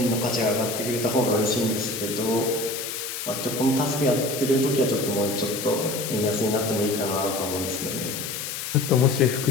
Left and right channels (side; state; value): left; noise; hiss, 6 dB below the sound